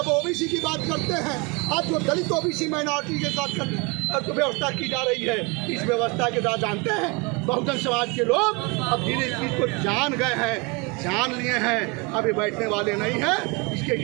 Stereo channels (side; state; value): left; quieter; 28.8 dB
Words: ओबीसी की बात करते हैं, आज जो दलित ओबीसी माइनॉरिटी के साथ व्यवस्था की जा रही है, इस व्यवस्था के साथ जानते हैं बहुजन समाज के लोग अब धीरे इसको जान गए हैं, जान लिए हैं। अब ये बैठने वाले नहीं हैं। इसके